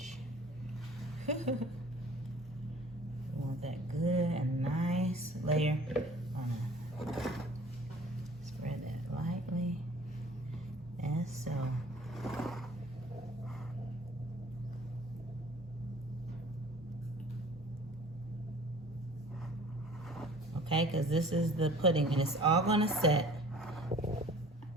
Want that good and nice layer on it. Spread that lightly, and so. Okay, because this is the pudding and it's all gonna set.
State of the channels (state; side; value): normal; both; correlation 0.49